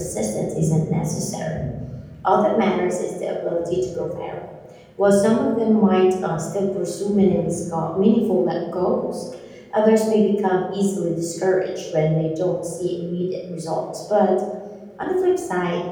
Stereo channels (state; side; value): identical; both; correlation 1.00